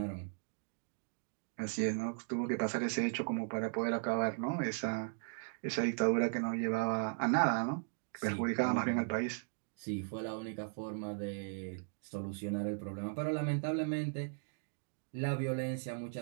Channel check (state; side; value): silent; left; digital silence